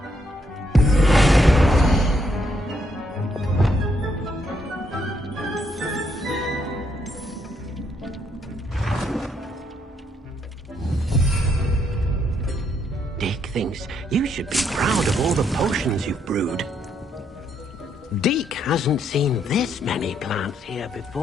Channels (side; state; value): both; normal; correlation 0.74